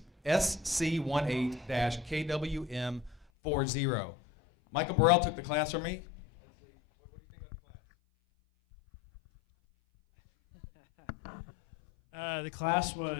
SC18-KWM40. Michael Burrell took the class from me. The class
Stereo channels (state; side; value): drops out; right; at 3.2 s